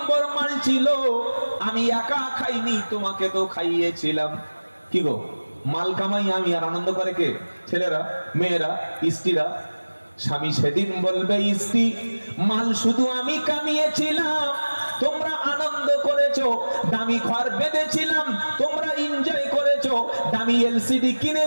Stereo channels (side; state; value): both; inverted; correlation -1.00